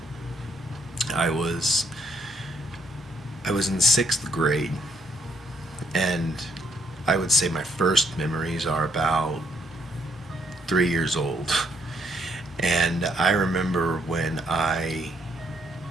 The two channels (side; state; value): both; normal; correlation 0.71